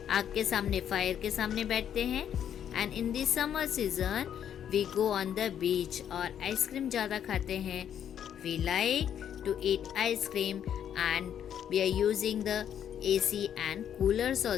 आग के सामने, fire के सामने बैठते हैं. And in the summer season we go on the beach और आइसक्रीम ज़्यादा खाते हैं. We like to eat ice cream and we are using the AC and coolers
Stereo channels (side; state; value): right; quieter; 9.4 dB